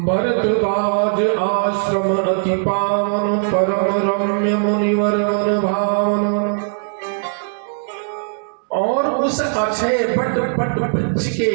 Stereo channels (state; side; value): silent; left; 67 dB below the other